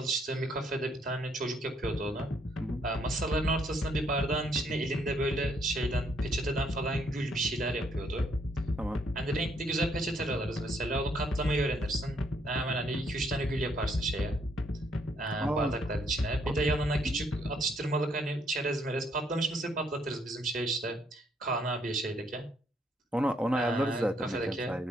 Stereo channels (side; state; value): both; normal; correlation 0.70